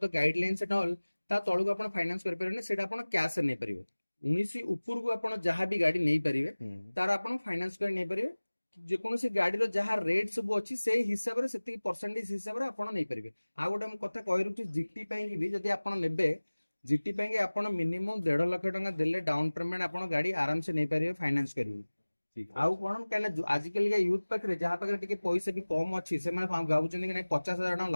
the guidelines at all ता तळु को आपण फाइनांस करि परिबे सेटा आपण कैश नै परिबे 19 ऊपर को आपण जहा भी गाड़ी नै परिबे तार आपण फाइनांस कर नै परिबे जे कोनोसी गाड़ी रो जहा रेट सब अछि से हिसाब रे सेति परसेंटेज हिसाब रे आपण नै परिबे आ गोटे हम कथा कहि रुछि जीटी पई भी जदी आपण नेबे जीटी पई आपण मिनिमम 1.5 लाख टका देले डाउन पेमेंट आपण गाड़ी आराम से नै परिबे फाइनांस करिवे ठीक आउ कोन कहना आजकल के यूथ पाखरे जहा पाखरे टिके पैसा भी कम अछि से माने गाउचन कि नै 50,000 टका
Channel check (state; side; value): inverted; both; correlation -1.00